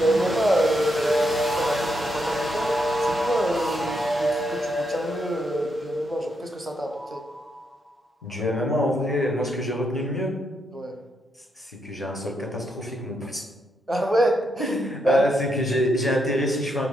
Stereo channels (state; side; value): normal; both; correlation 0.79